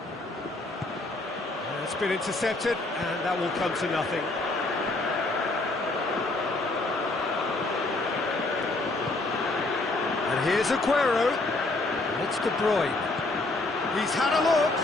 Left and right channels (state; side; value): quieter; right; 3.0 dB